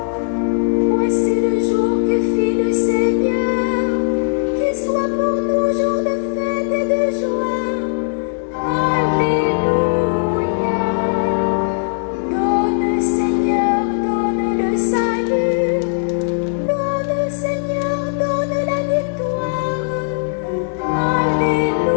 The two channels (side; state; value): right; silent; digital silence